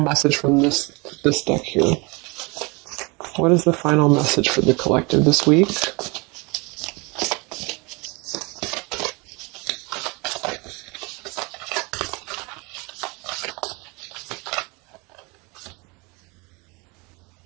from this deck here. What is the final message for the collective this week?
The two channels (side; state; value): left; quieter; 27.9 dB